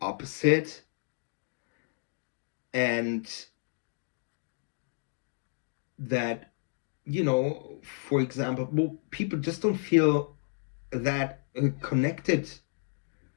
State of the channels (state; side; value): silent; right; digital silence